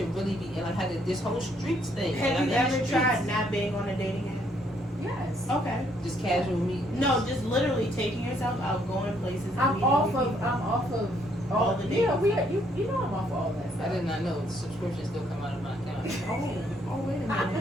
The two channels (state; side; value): normal; both; correlation 0.69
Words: really be, and like how this whole streets thing. Have like, you I'm in the ever streets. tried not being on a dating app? Yes. Okay. Just casual meetings? No, just literally taking yourself out, going places. and I'm meeting off new of people. all the yeah, dating you know I'm off of all that stuff. I did not know the subscription still come out of my account. Oh, wait a